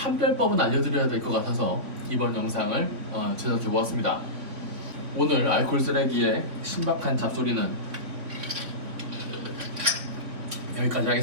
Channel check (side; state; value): left; late; 3.5 ms